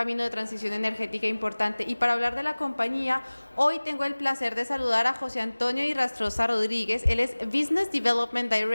de transición energética importante. Y para hablar de la compañía, hoy tengo el placer de saludar a José Antonio Irrastrosa Rodríguez. Él es Business Development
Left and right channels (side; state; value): both; inverted; correlation -1.00